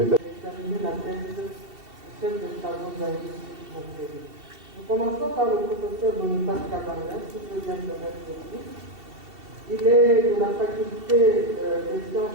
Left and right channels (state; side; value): late; left; 2.7 ms